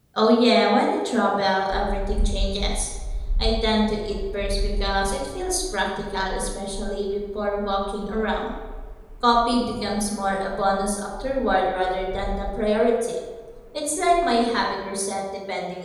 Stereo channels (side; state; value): both; identical; correlation 1.00